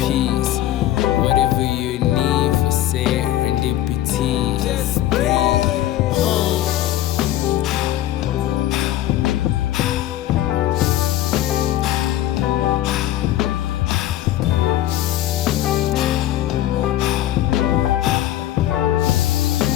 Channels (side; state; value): right; quieter; 13.3 dB